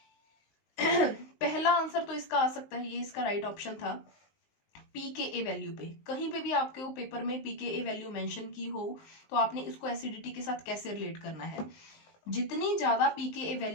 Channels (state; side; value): late; right; 19 ms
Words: पहला आंसर तो इसका आ सकता है, ये इसका राइट ऑप्शन था, pKa वैल्यू पे, कहीं पे भी आपके वो पेपर में pKa वैल्यू मेंशन की हो तो आपने इसको एसिडिटी के साथ कैसे रिलेट करना है, जितनी ज्यादा pKa